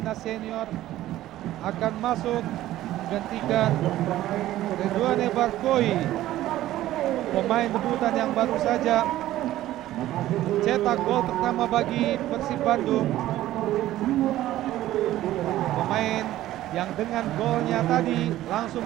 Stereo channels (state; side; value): quieter; left; 14.5 dB